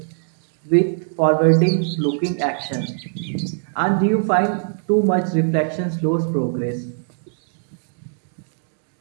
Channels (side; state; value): left; silent; digital silence